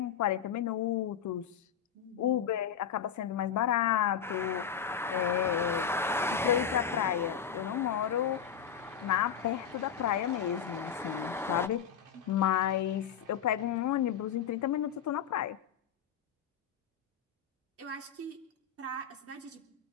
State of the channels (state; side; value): quieter; right; 8.1 dB